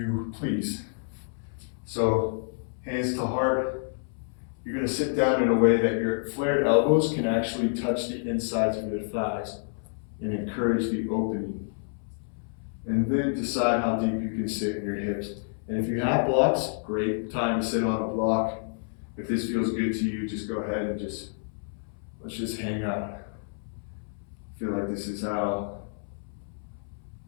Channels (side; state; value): right; silent; 59 dB below the other